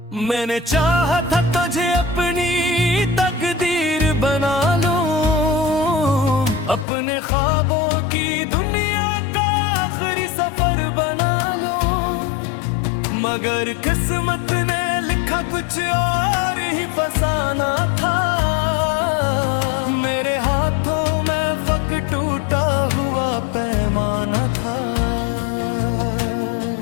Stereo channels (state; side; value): drops out; right; at 6.9 s